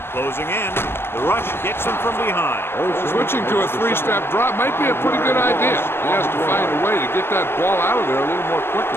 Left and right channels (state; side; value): late; right; 0.11 ms